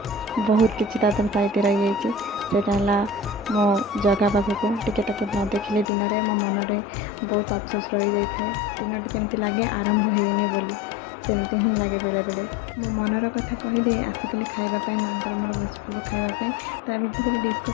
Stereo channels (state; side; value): drops out; right; at 5.9 s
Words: बहुत किसी तादर साइड रही जाइए। मो जगह पाखक टिके न देखिले दिन में मो मन में बहुत अफसोस रही जाए। दिनटी केमती लगे आरंभ होनी बोली, सेमती ही लगे बेले बेले। मो मनर कथा कहीदे आसिकली खाइबापी माँ मोर बसपुलू खाइबापी। ता भितर